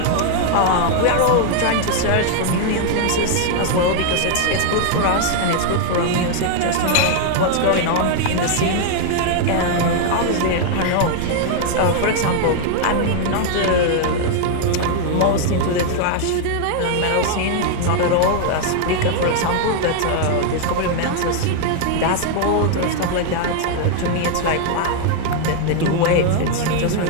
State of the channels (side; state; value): both; different; correlation 0.00